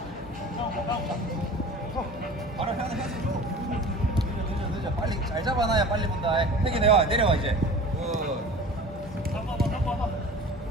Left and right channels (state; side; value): normal; both; correlation 0.40